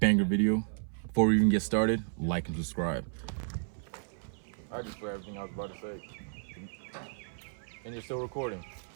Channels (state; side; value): silent; left; 56 dB below the other